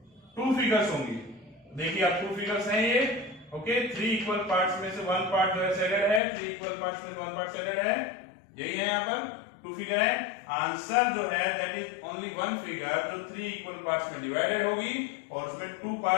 2 फिगर्स होंगी। देखिए आप 2 फिगर्स हैं ये। ओके, 3 इक्वल पार्ट्स में से 1 पार्ट जो है शेडेड है, 3 इक्वल पार्ट्स में से 1 पार्ट शेडेड है, यही है यहाँ पर 2 फिगर है। आंसर जो है दैट इज ओनली 1 फिगर जो 3 इक्वल पार्ट्स में डिवाइडेड होगी, और उसमें 2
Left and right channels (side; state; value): right; drops out; at 6.2 s